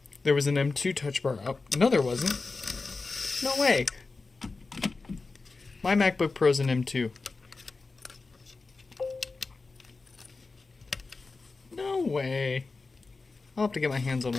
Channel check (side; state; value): right; quieter; 3.9 dB